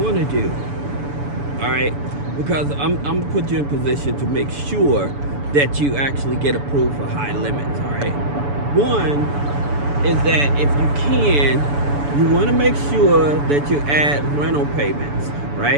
to do. All right, because I'm gonna put you in position to make sure that you actually get approved for high limits. All right, one is that if you can, you want to make sure that you add rental payments,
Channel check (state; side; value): late; left; 7.0 ms